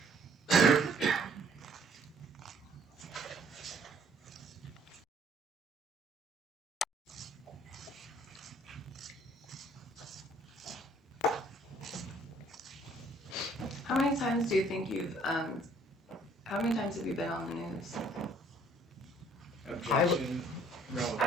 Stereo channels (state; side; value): normal; both; correlation 0.60